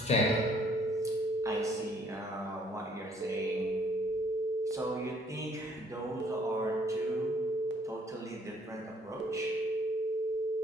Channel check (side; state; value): both; normal; correlation 0.63